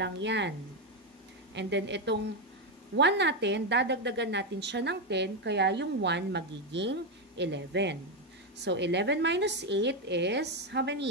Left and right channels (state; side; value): normal; both; correlation 0.07